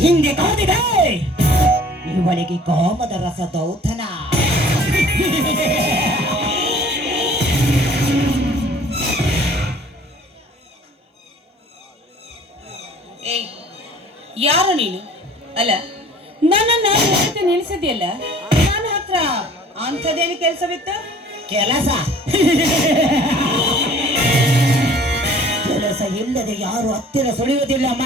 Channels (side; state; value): both; normal; correlation 0.51